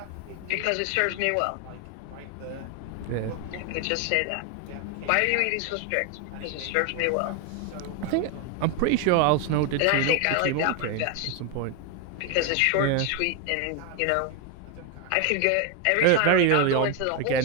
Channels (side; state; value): both; different; correlation 0.01